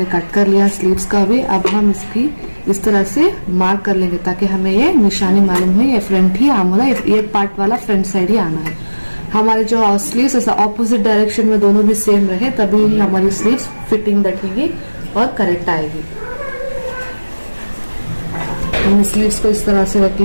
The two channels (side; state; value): both; inverted; correlation -1.00